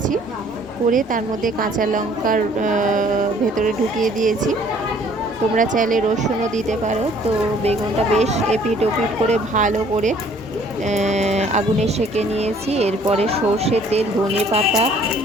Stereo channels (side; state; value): both; normal; correlation 0.58